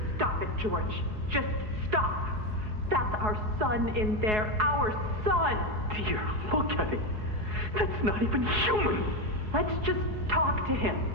Stop it, George. Just stop. That's our son in there. Our son! Dear, look at him. That's not even human. Let's just talk to him.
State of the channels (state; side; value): late; left; 4.7 ms